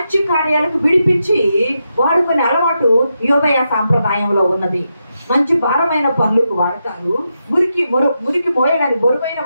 కార్యాలకు విడిపించి వాడుకునే అలవాటు యోదయ సాంప్రదాయంలో ఉన్నది. మంచి భారమైన పనులకు వాడతారు, మురికి మోయడానికి, బరువైన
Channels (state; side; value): inverted; both; correlation -0.86